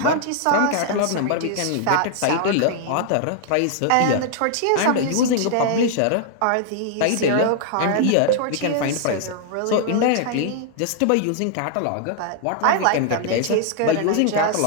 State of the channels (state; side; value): different; both; correlation 0.00